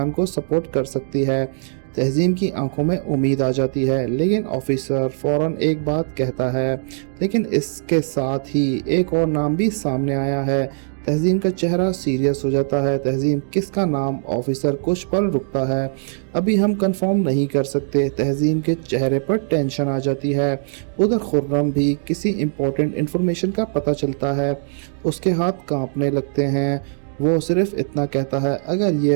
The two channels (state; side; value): silent; left; digital silence